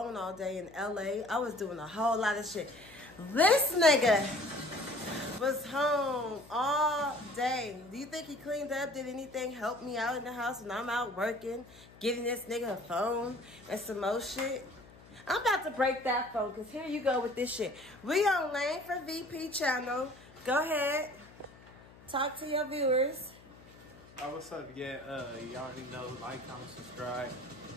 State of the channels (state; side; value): noise; left; hum, 22 dB below the sound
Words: all day in LA. I was doing a whole lot of shit. This nigga was home all day. Do you think he cleaned up? Did anything help me out in the house when I'm out working? Giving this nigga a phone and some more shit? I'm about to break that phone because here you go with this shit. We on Lane for VP channel. Go ahead. Talk to your viewers. Oh, what's up? Yeah, you already know. Like, comment, subscribe.